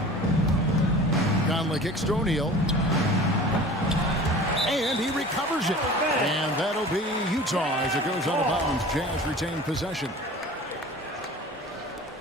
Conley kicks to O'Neal. And he recovers it. And that'll be Utah as it goes out of bounds. Jazz retain possession.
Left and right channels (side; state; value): both; normal; correlation 0.41